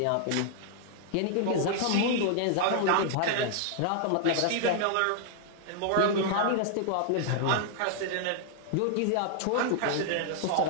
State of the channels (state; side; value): different; both; correlation 0.00